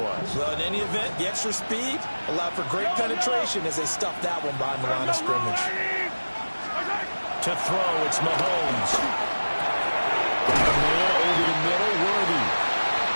Well, in any event, the extra speed allowed for great penetration as they stuffed that one behind the line of scrimmage. To throw, it's Mahomes. Got a man over the middle, Worthy.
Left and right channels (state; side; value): inverted; both; correlation -1.00